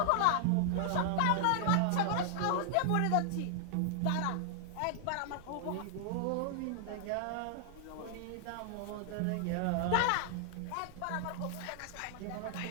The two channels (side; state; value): both; different; correlation -0.01